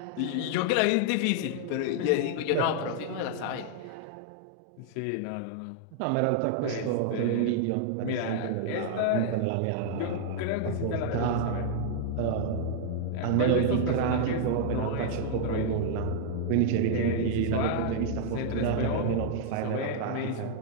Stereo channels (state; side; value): different; both; correlation -0.01